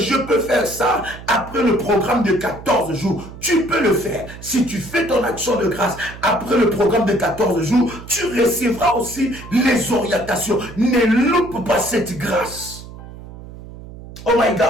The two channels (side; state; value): right; noise; hum, 15 dB below the sound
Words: peux faire ça après le programme de 14 jours? Tu peux le faire. Si tu fais ton action de grâce après le programme de 14 jours, tu recevras aussi les orientations. Ne loupe pas cette grâce. Oh my